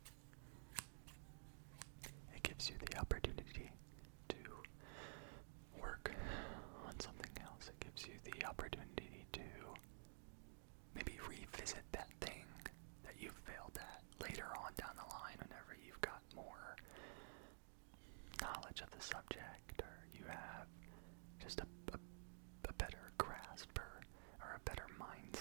It gives you the opportunity to work on something else. It gives you the opportunity to maybe revisit that thing that you failed at later on down the line whenever you've got more knowledge of the subject, or you have just a better grasp or a better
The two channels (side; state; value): left; silent; digital silence